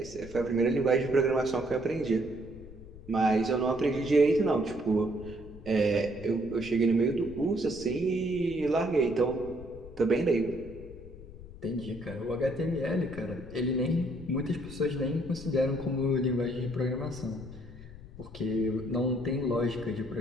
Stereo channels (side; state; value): left; noise; rumble, 16 dB below the sound